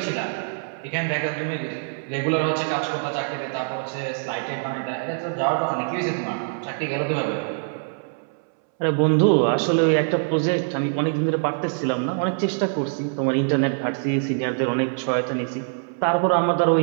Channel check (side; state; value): left; silent; 63 dB below the other